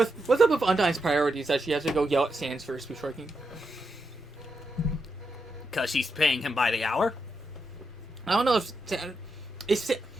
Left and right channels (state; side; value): normal; both; correlation 0.84